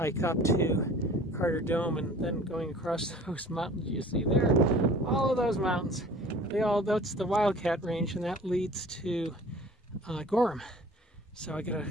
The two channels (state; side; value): normal; both; correlation 0.46